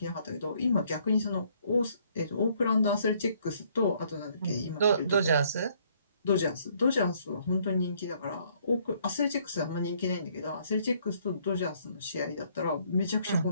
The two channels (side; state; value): both; inverted; correlation -0.65